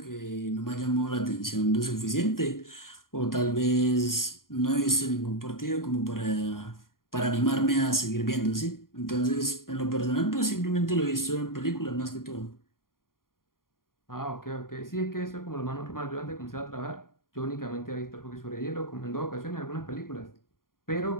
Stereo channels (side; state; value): right; late; 0.91 ms